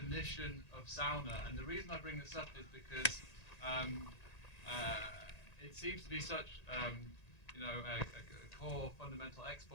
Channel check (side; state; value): right; late; 1.8 ms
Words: of sauna. And the reason I bring this up is because it seems to be such, a core fundamental